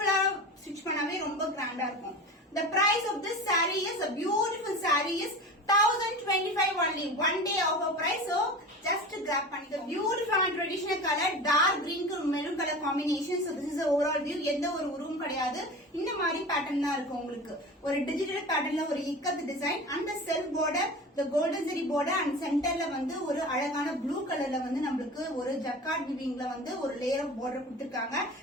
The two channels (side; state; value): both; normal; correlation 0.33